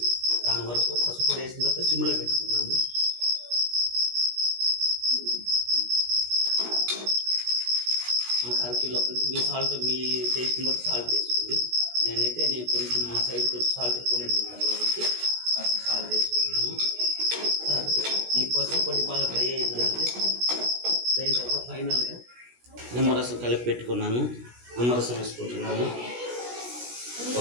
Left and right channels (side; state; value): left; late; 16 ms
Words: దాని వరకు పసుపు పొడి వేసిన తర్వాత సిమ్లో పెట్టుకున్నాము. మనకు 1/2 కిలో మీ సాల్ట్, మీ టేస్ట్ని బట్టి సాల్ట్ వేసుకోండి. నేను కొంచెం మా సైడ్ కొంచెం సాల్ట్ ఎక్కువనే తింటాను కాబట్టి సాల్ట్ వేసుకున్నాము. ఈ పసుపు పొడి బాగా డ్రై అయ్యిందంటే దాని తర్వాత ఫైనల్గా నిమ్మరసం కలిపి పెట్టుకున్నాను. నిమ్మరసం వేసుకుంటున్నాను.